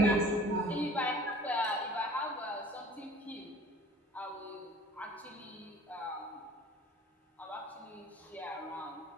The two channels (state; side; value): normal; both; correlation 0.48